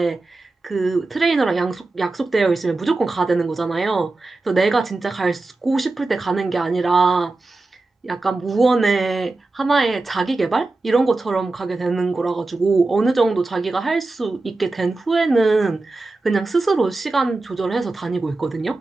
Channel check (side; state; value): left; quieter; 3.3 dB